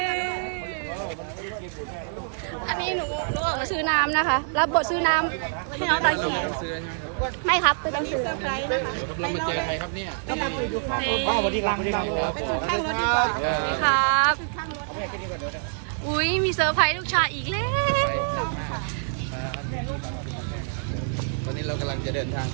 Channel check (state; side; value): silent; left; 61 dB below the other